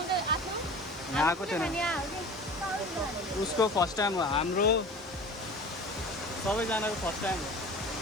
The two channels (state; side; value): normal; both; correlation 0.38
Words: यहाँ आएको थिएन, उसको फर्स्ट टाइम हो, हाम्रो सबैजनाको फर्स्ट टाइम हो।